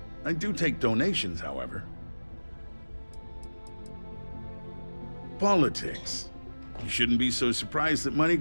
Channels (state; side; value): inverted; both; correlation -1.00